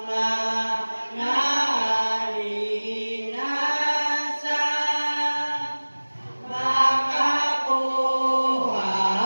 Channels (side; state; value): both; inverted; correlation -1.00